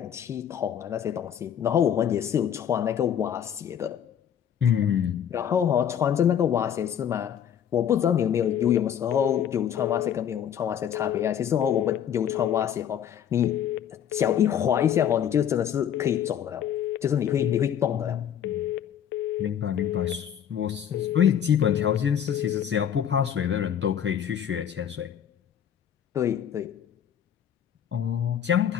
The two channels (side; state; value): right; quieter; 9.2 dB